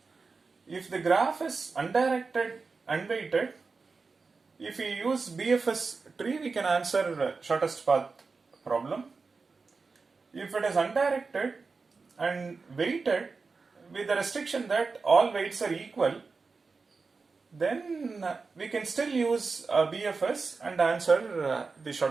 If the graph is undirected, unweighted, if we use BFS tree, we can answer shortest path problem. If it is undirected and weighted with the restriction that all weights are equal, then we can still use BFS and answer the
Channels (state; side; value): quieter; left; 4.4 dB